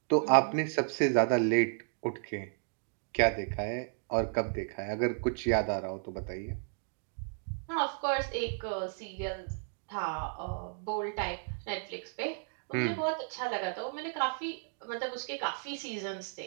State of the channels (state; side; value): silent; left; 55 dB below the other